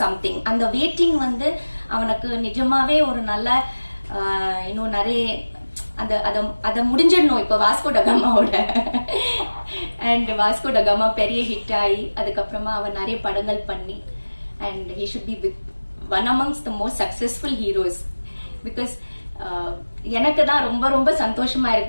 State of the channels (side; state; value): both; inverted; correlation -1.00